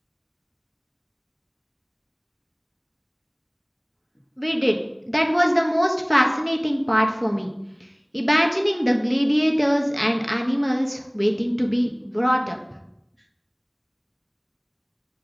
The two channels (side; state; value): both; identical; correlation 1.00